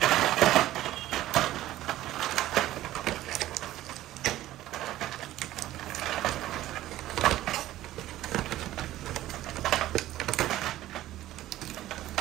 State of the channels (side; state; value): left; quieter; 14.7 dB